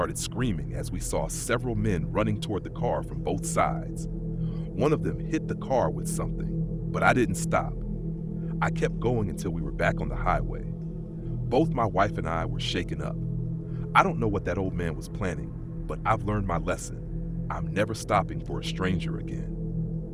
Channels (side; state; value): both; identical; correlation 1.00